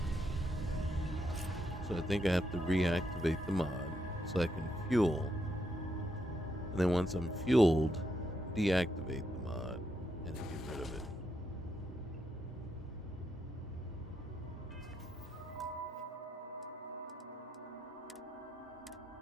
So I think I have to reactivate the mod so I can fuel. And then once I'm fueled, deactivate the mod and get rid of it.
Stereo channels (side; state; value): both; normal; correlation 0.80